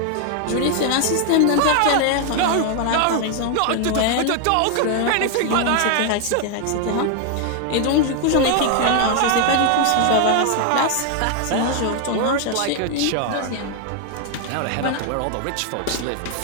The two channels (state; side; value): different; both; correlation 0.01